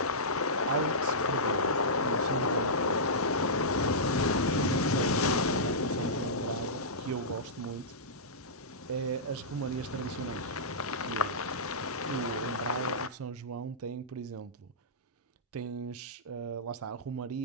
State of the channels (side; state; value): both; normal; correlation -0.15